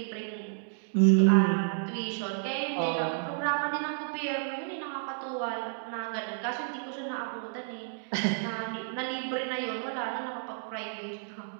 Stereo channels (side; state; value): left; silent; digital silence